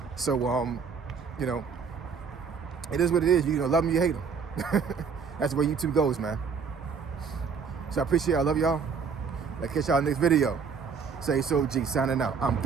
So, it is what it is. You love them, you hate them. That's the way YouTube goes, man. So I appreciate it. I love y'all. I'll catch y'all next video. Say so G, signing out. I'm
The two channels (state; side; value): quieter; left; 5.8 dB